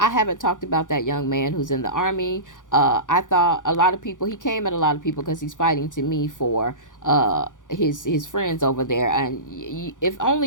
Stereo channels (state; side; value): late; right; 0.87 ms